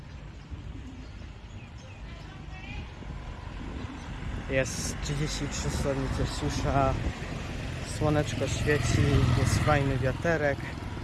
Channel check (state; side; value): identical; both; correlation 1.00